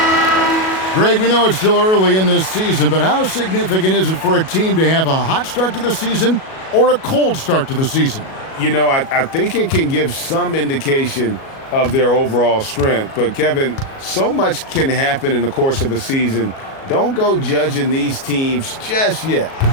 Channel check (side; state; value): right; late; 37 ms